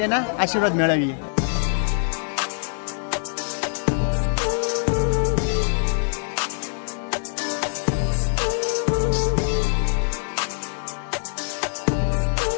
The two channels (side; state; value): right; silent; digital silence